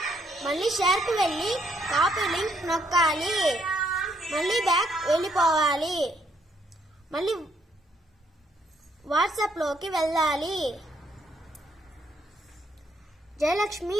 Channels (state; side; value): normal; both; correlation 0.71